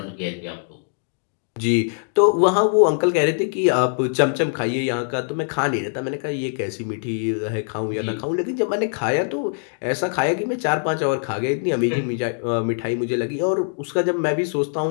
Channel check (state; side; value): silent; right; digital silence